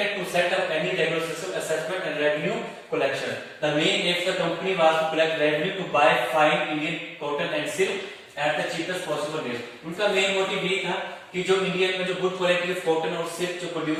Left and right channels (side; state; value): both; identical; correlation 1.00